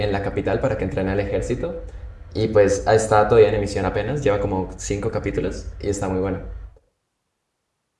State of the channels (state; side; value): identical; both; correlation 1.00